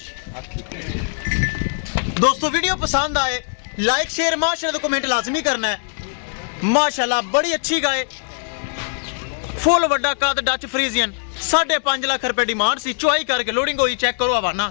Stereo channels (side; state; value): right; silent; digital silence